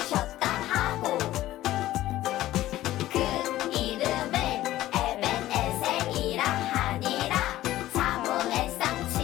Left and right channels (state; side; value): quieter; right; 15.0 dB